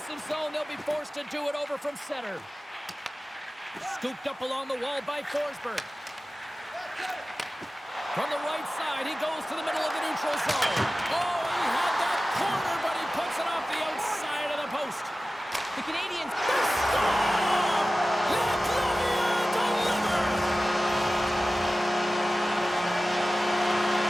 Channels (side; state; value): both; normal; correlation 0.96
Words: zone. They'll be forced to do it over from center. Scooped up along the wall by Forsberg. From the right side, he goes to the middle of the neutral zone. Oh, he had that corner, but he puts it off the outside of the post. The Canadians...